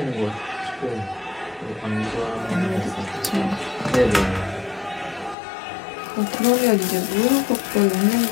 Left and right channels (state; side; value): drops out; right; at 5.4 s